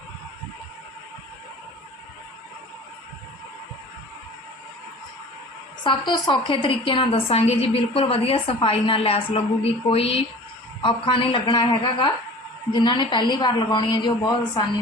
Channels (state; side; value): normal; both; correlation 0.42